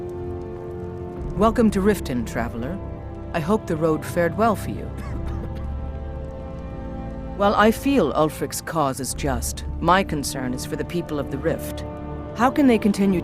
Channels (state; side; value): identical; both; correlation 1.00